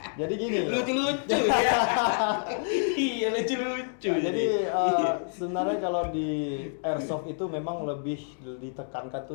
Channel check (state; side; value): silent; right; digital silence